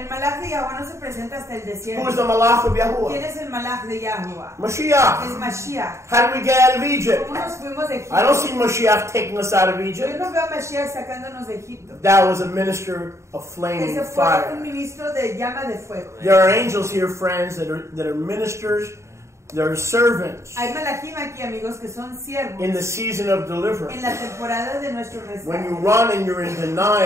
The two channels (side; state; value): left; late; 0.14 ms